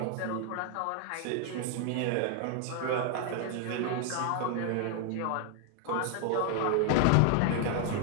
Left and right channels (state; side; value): different; both; correlation 0.00